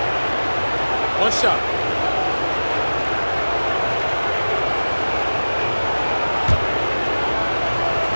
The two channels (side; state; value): both; inverted; correlation -1.00